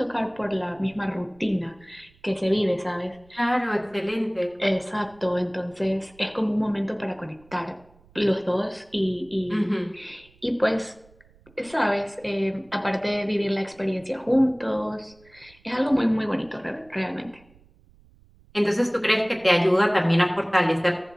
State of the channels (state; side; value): noise; right; rumble, 29 dB below the sound